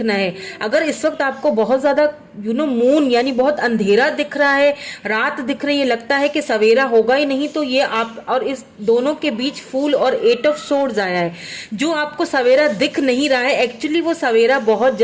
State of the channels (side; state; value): both; identical; correlation 1.00